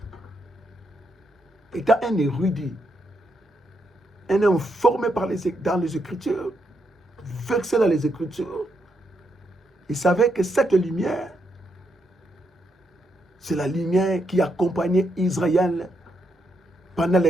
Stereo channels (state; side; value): normal; both; correlation 0.79